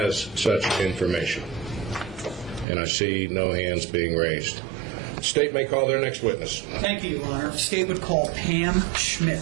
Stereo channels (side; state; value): left; drops out; at 2.7 s